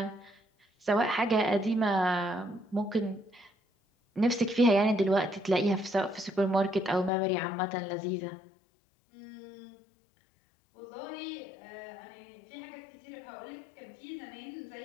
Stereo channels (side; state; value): right; drops out; at 7.1 s